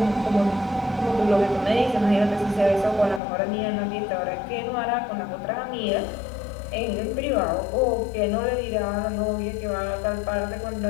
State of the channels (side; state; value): right; drops out; at 3.2 s